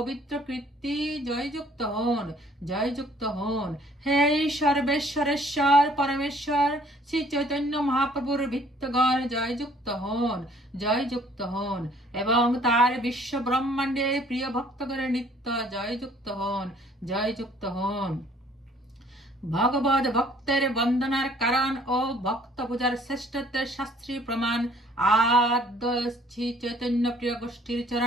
কীর্তি জয়যুক্ত হন, জয়যুক্ত হন। হে সর্বেশ্বরেশ্বর পরমেশ্বর শ্রী চৈতন্য মহাপ্রভুর ভৃত্যগণ জয়যুক্ত হন, জয়যুক্ত হন। এবং তার বিশ্ব ব্রহ্মাণ্ডের প্রিয় ভক্তগণের নিত্য জয়যুক্ত হন, জয়যুক্ত হন। ভগবত ভক্তের বন্দনার কারণ ও ভক্ত পূজার শ্রেষ্ঠত্বের শাস্ত্রীয় প্রমাণ আদ্য শ্রী চৈতন্য প্রিয় গোষ্ঠীর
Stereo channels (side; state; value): both; normal; correlation 0.59